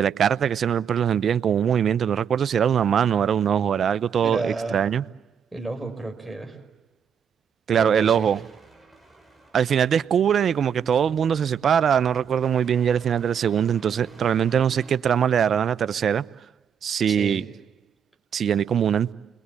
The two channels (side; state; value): left; quieter; 7.7 dB